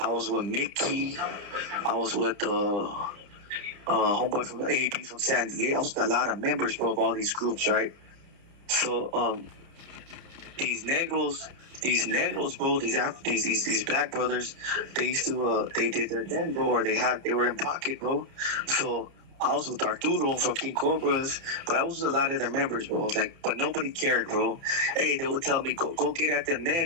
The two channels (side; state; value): left; late; 30 ms